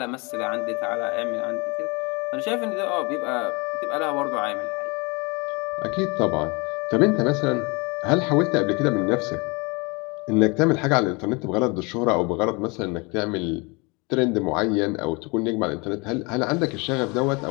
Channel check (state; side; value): quieter; right; 28.4 dB